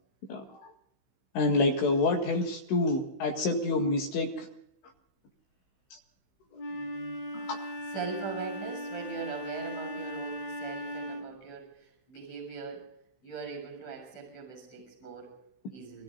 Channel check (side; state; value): right; late; 16 ms